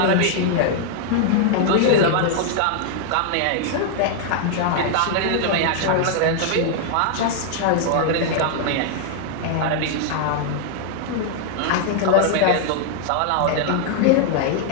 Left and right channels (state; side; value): different; both; correlation -0.01